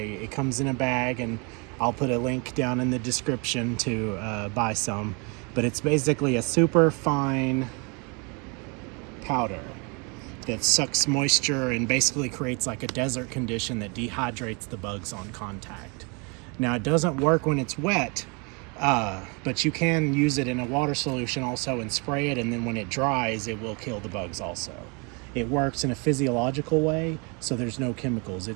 comes in a bag, and I'll put a link down in the description to buy some. But it's basically a super fine powder that sucks moisture and basically creates like a desert condition that dehydrates the bugs on contact. Now it doesn't work when it's wet, but you can use it in a water solution also and spray it, and then when it dries it will kill the bugs also. It works in a physiological way, so there's no chemicals.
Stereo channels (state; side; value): quieter; left; 32.0 dB